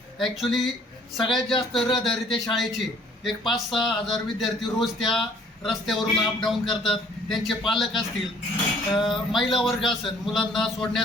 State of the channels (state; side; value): normal; both; correlation 0.58